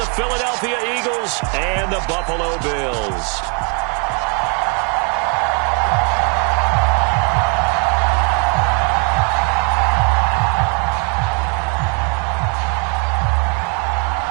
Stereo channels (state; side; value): quieter; left; 37.3 dB